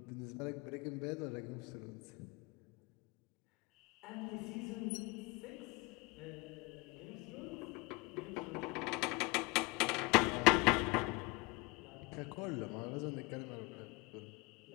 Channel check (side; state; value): right; quieter; 26.3 dB